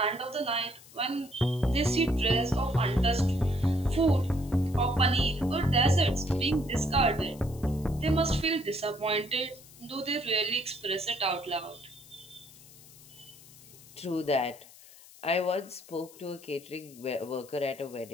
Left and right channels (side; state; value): left; noise; hiss, 21 dB below the sound